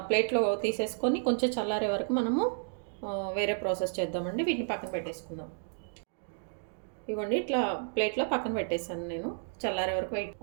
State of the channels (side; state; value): left; silent; digital silence